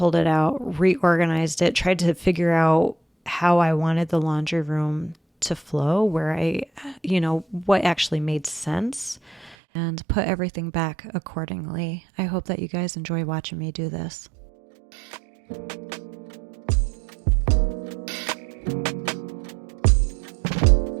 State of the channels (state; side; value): drops out; left; at 9.6 s